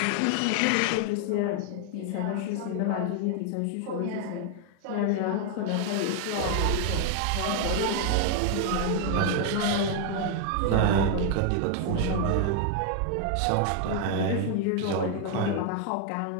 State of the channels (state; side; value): different; both; correlation 0.00